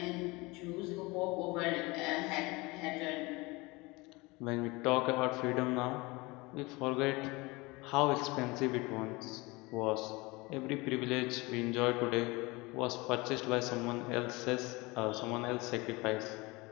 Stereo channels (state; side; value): quieter; right; 24.0 dB